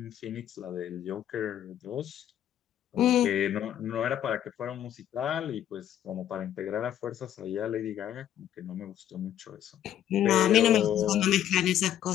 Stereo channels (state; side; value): quieter; right; 10.9 dB